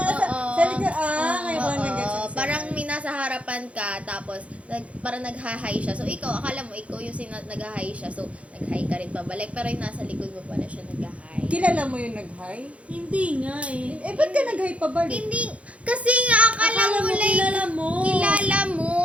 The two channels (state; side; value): late; left; 0.063 ms